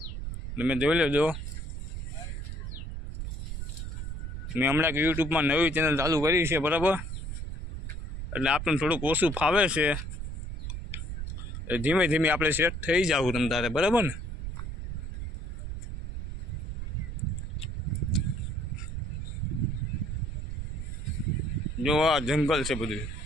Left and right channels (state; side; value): noise; right; rumble, 6 dB below the sound